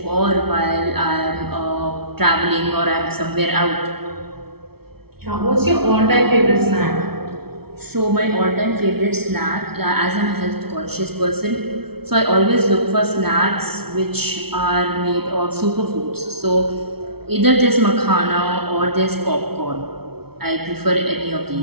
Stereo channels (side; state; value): left; late; 0.96 ms